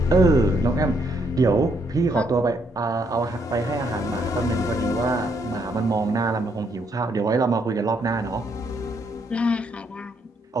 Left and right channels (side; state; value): both; normal; correlation 0.73